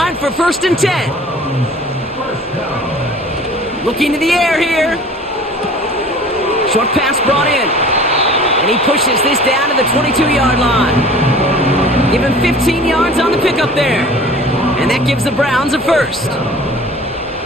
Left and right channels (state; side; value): normal; both; correlation 0.45